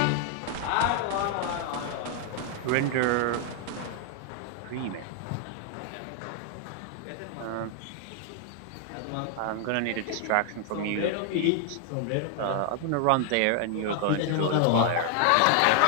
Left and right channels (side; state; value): both; different; correlation 0.00